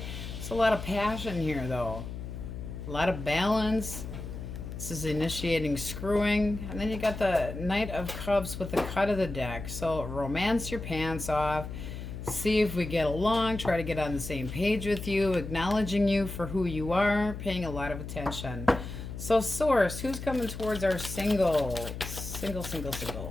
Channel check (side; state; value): left; noise; hum, 8 dB below the sound